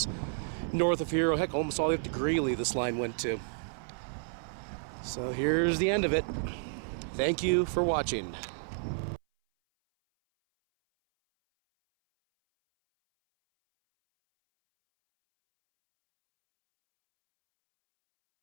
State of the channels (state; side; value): silent; left; 57 dB below the other